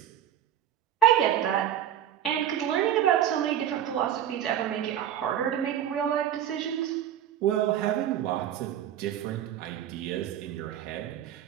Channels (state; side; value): quieter; left; 10.7 dB